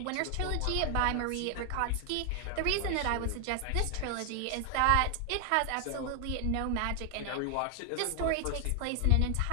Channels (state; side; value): different; both; correlation 0.00